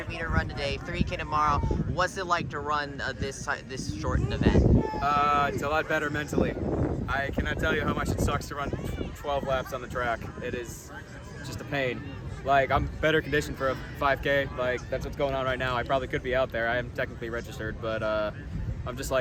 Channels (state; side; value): identical; both; correlation 1.00